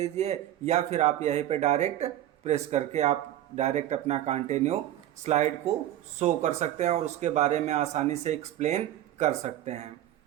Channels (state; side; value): quieter; left; 12.8 dB